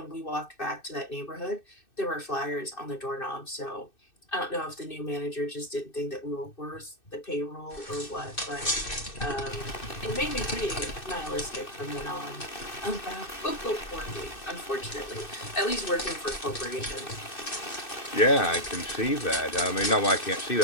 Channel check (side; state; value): right; late; 2.6 ms